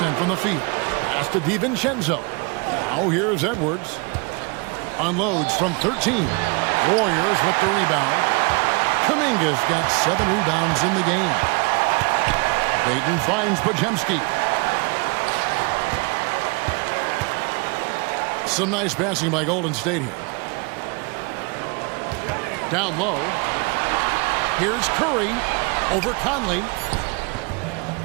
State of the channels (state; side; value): quieter; left; 29.6 dB